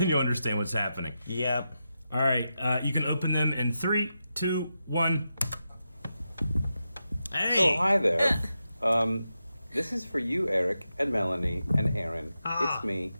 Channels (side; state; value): both; inverted; correlation -0.88